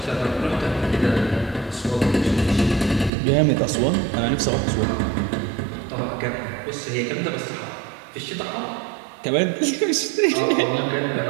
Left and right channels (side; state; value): left; drops out; at 3.1 s